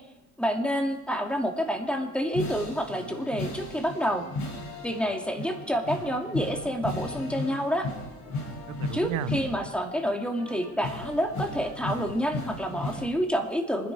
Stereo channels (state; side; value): normal; both; correlation 0.72